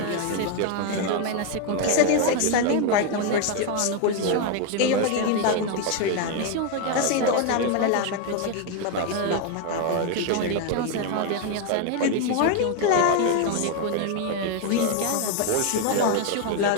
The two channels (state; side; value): different; both; correlation 0.01